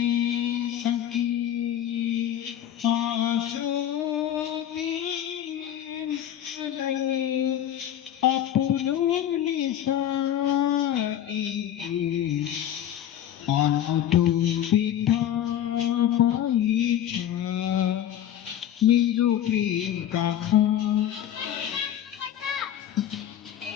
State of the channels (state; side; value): quieter; right; 10.9 dB